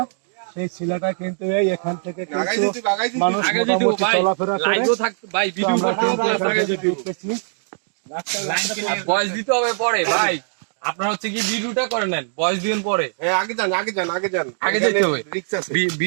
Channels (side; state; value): left; silent; digital silence